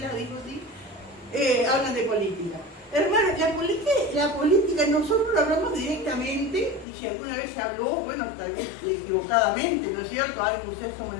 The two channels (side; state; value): right; drops out; at 6.9 s